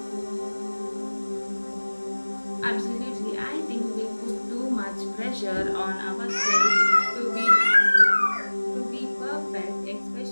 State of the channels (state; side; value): inverted; both; correlation -1.00